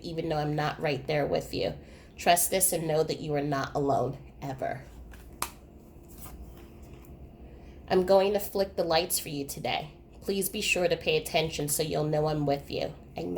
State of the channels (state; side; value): identical; both; correlation 1.00